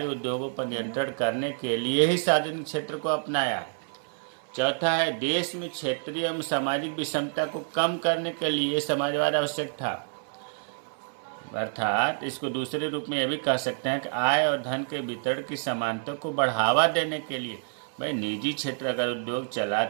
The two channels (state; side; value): silent; left; 59 dB below the other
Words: उद्योगों पर नियंत्रण करने के लिए ही सार्वजनिक क्षेत्र को अपनाया। चौथा है, देश में क्षेत्रीय एवं सामाजिक विषमता को कम करने के लिए समाजवाद आवश्यक था। अर्थात इसको दूसरे रूप में यह भी कह सकते हैं कि आय और धन के वितरण की समानता को बढ़ावा देने के लिए, भाई निजी क्षेत्र अगर उद्योग